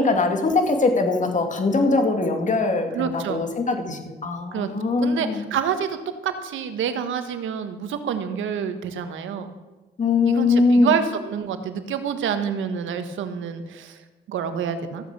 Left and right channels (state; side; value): normal; both; correlation 0.49